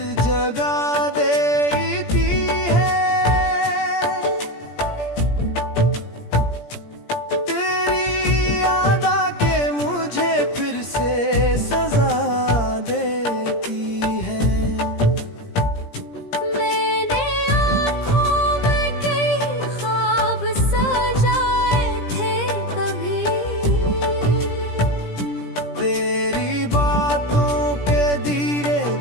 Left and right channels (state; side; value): late; right; 17 ms